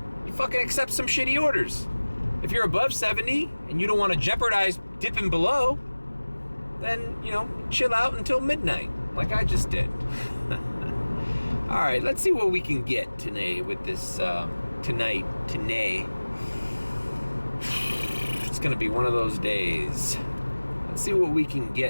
you fucking accept some shitty orders. If you're above 70 and you don't want to jeopardize dipping below, then, you know, chill out until midnight, like I just did. All right, let's see what we can get today with this, today. It's gonna be one of those days. Let's see what we can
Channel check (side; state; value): both; inverted; correlation -1.00